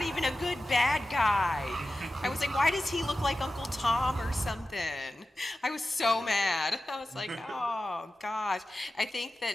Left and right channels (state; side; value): normal; both; correlation 0.94